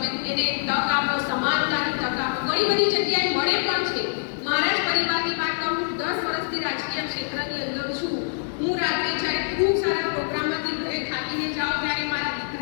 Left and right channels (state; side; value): silent; right; digital silence